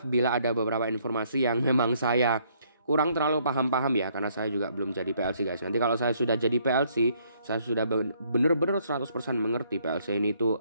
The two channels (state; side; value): inverted; both; correlation -0.67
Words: bila ada beberapa informasi yang memang saya kurang terlalu paham ya, karena saya juga belum jadi PLC guys. Nanti kalau saya sudah jadi PLC, saya sudah bener-bener 100% mengerti PLC ini